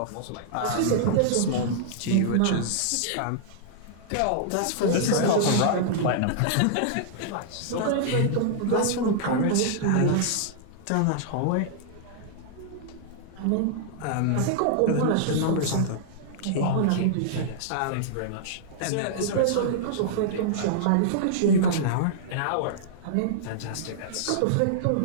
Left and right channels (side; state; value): both; different; correlation -0.02